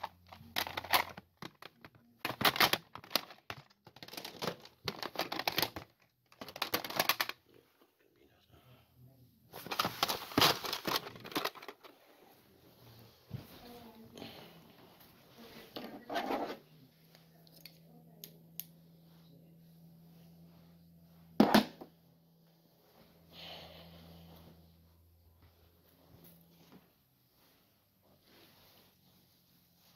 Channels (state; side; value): identical; both; correlation 1.00